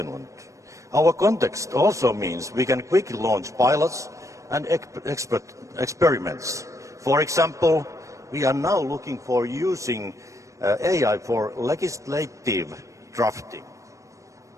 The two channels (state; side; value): late; left; 0.15 ms